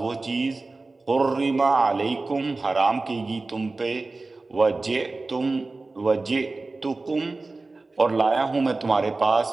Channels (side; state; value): left; quieter; 3.5 dB